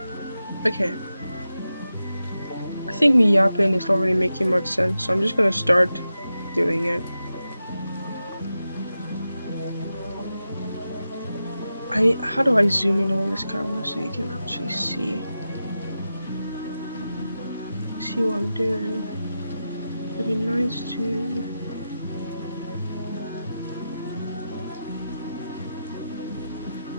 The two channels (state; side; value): inverted; both; correlation -0.91